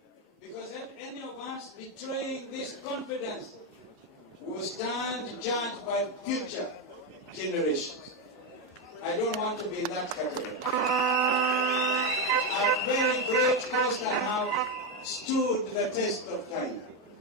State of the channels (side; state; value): both; normal; correlation 0.08